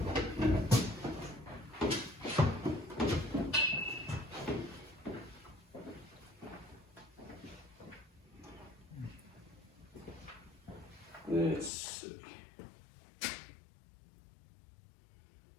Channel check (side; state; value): right; drops out; at 11.7 s